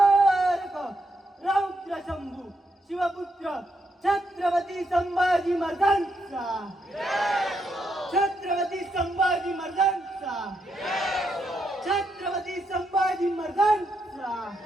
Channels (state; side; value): normal; both; correlation 0.80